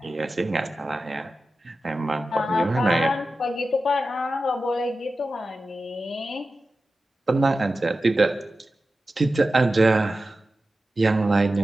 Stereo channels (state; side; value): normal; both; correlation 0.93